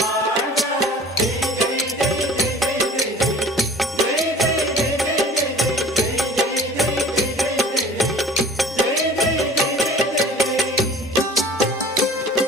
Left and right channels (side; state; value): both; normal; correlation 0.46